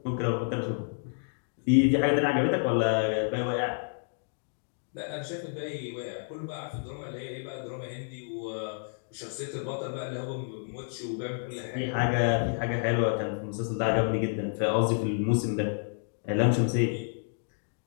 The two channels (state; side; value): silent; right; digital silence